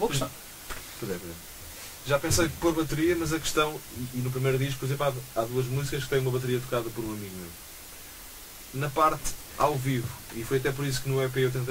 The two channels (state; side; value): identical; both; correlation 1.00